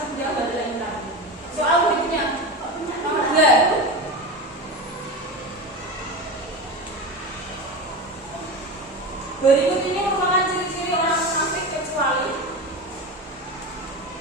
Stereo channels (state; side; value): normal; both; correlation 0.24